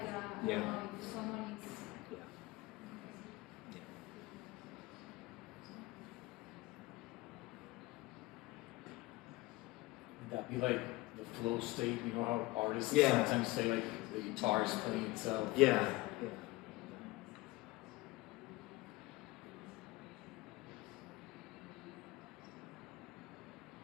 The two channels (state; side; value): quieter; right; 21.1 dB